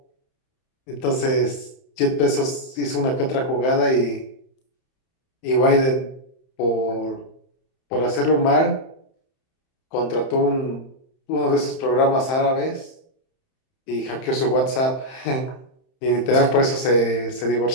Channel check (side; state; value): right; late; 31 ms